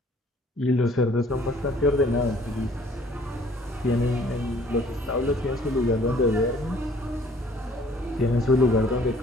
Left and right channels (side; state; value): both; normal; correlation 0.57